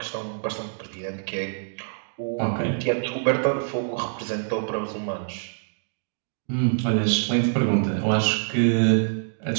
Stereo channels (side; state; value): left; silent; digital silence